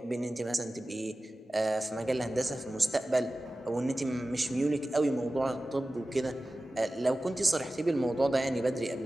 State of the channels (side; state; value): both; normal; correlation 0.96